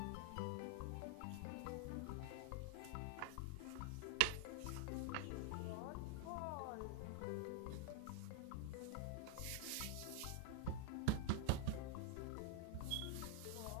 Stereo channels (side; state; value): both; different; correlation -0.01